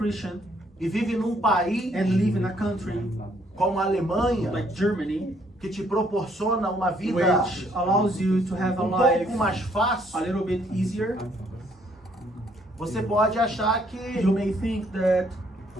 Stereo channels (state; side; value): normal; both; correlation 0.67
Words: e vive num país and live in a country como a Alemanha, like Germany, que te proporciona uma vida which allows you to have a life pouco mais a fácil, little bit easier, você pode achar que you may think that